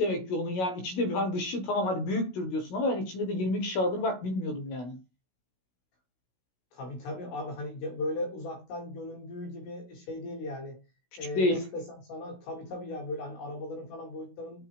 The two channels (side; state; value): right; late; 16 ms